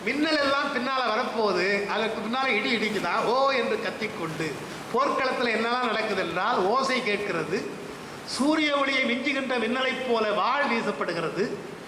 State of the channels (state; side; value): identical; both; correlation 1.00